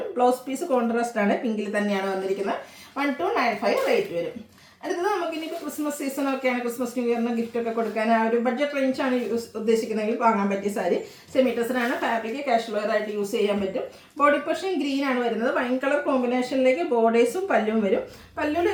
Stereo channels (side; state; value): both; identical; correlation 1.00